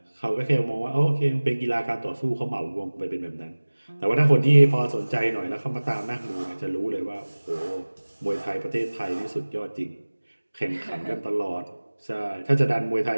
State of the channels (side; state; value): both; inverted; correlation -1.00